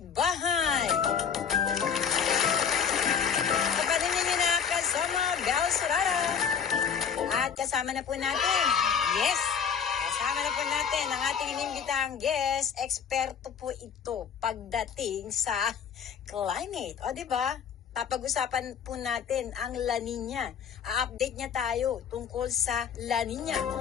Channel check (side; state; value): right; quieter; 7.3 dB